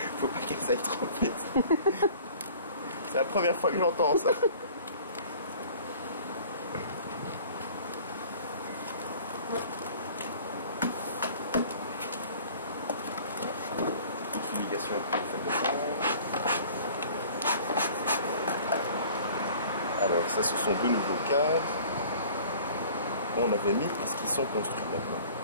Faut pas qu'elles aillent trop vite. C'est la première fois que j'entends ça. Fumigation pour faire descendre. Alors ça, ce sont deux nouveaux cadres. On avait mis parce qu'ils sont construits maintenant.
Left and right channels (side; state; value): both; inverted; correlation -0.48